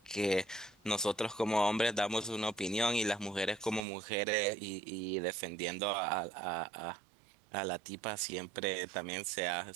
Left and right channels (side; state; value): left; drops out; at 3.9 s